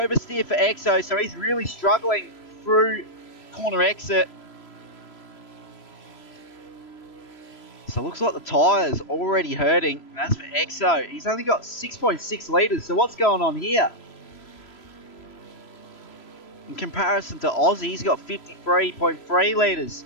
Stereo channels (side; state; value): right; late; 3.0 ms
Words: for Exo, so he's really struggling through corner exit. So it looks like the tyres already hurting. And as for Exo, he's only got 6.6 litres. So what's going on here? In comparison to Aussie, he's got 53.3 litres.